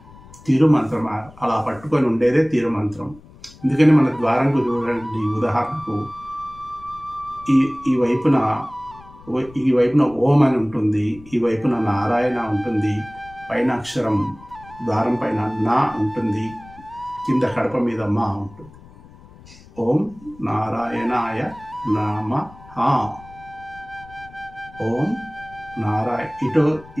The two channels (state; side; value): noise; left; rumble, 21 dB below the sound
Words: తిరుమంత్రం. అలా పట్టుకొని ఉండేదే తిరుమంత్రం. అందుకని మన ద్వారంకు చూడండి, ఉదాహరణకు ఈ వైపున ఓం అని ఉంటుంది, ఈ వైపున నారాయణ ఉంటుంది, పైన అక్షరం ద్వారం పైన నా ఉంటుంది, కింద కడప మీద మా ఉంటుంది. ఓం నారాయణాయ నమః. ఓం ఇటు